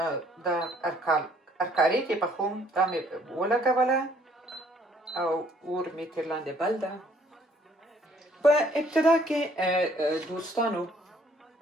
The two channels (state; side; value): normal; both; correlation 0.62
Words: د ارکارې کې پخوم دا مې ولګوله او اور مې تر لاندې بل ده په ابتدا کې دوستانو